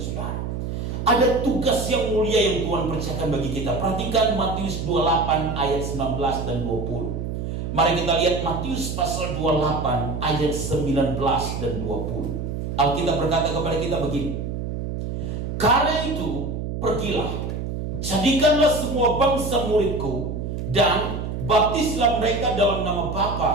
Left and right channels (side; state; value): right; noise; hum, 4 dB below the sound